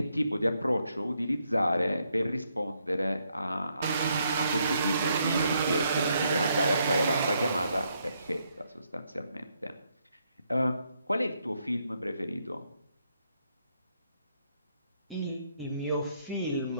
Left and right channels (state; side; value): inverted; both; correlation -0.76